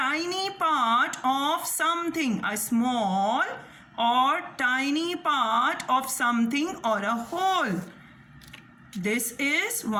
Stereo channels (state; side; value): identical; both; correlation 1.00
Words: part of something. A small or tiny part of something or a whole. This is